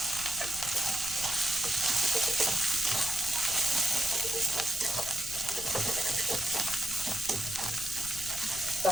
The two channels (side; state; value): left; noise; rumble, 14 dB below the sound